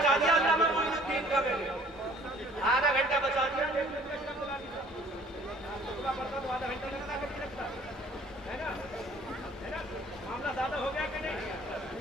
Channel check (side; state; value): both; normal; correlation 0.54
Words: दिया अल्लामा मोइनुद्दीन का मैंने, आधा घंटा बचा दिया। तो आधा घंटा लगता है ना, है ना? मामला ज्यादा हो गया कि नहीं?